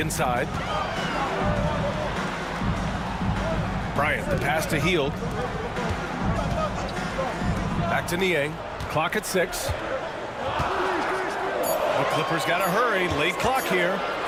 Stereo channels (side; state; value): both; identical; correlation 1.00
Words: Bryant, the pass to Hield. Back to Niang. Clock at 6. The Clippers got to hurry. Late clock here.